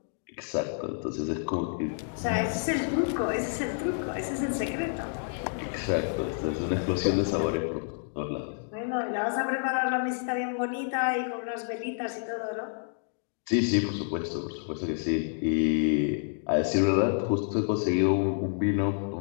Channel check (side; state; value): right; silent; digital silence